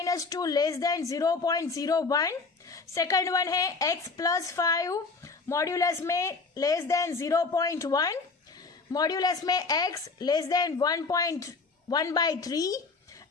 less than 0.01। Second one है x+5 मॉड्यूलस में लेस देन 0.1। मॉड्यूलस में x लेस देन 1.1/3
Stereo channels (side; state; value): right; quieter; 4.2 dB